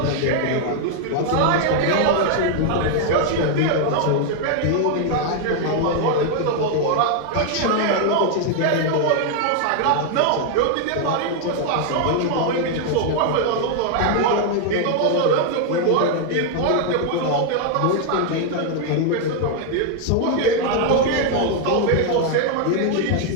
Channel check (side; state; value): both; different; correlation 0.00